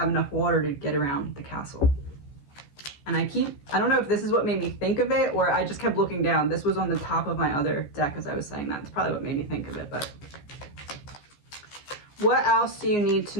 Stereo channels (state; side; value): late; right; 14 ms